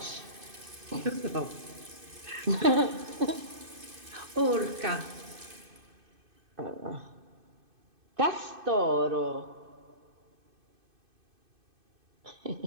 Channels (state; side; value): late; left; 2.5 ms